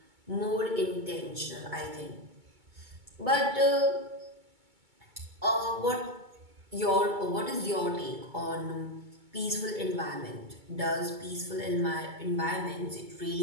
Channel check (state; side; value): late; left; 2.2 ms